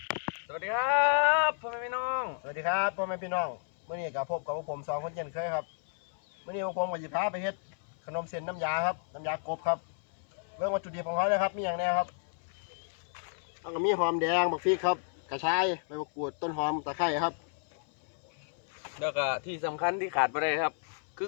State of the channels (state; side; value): silent; right; 56 dB below the other